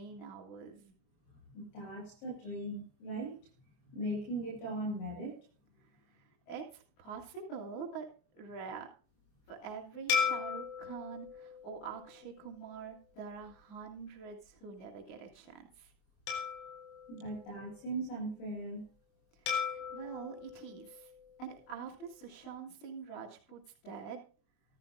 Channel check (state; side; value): late; right; 24 ms